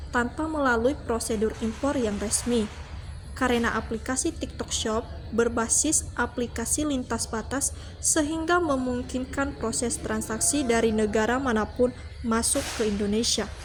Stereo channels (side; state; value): both; identical; correlation 1.00